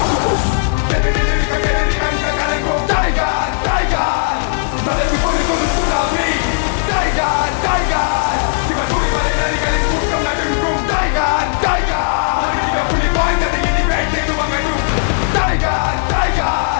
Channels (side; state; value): right; silent; digital silence